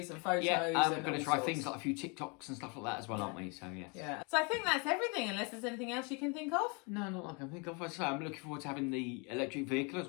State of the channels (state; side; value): quieter; right; 32.3 dB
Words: and photos. Yeah, we're going to try things like a few TikToks and stuff like that as well, aren't we? So, yes. Yeah. So I think that's everything, unless there's anything else you can think of. No, not that I can think of. So I'm looking forward to having the electric vehicle as